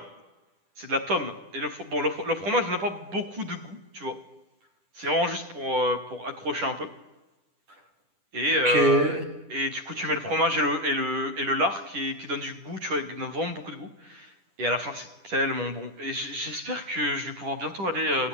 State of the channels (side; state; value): left; late; 10 ms